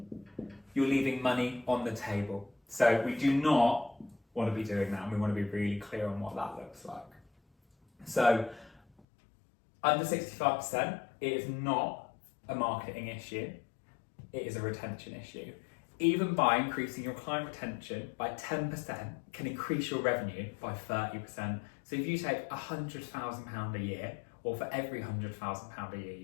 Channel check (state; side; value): drops out; right; at 9.0 s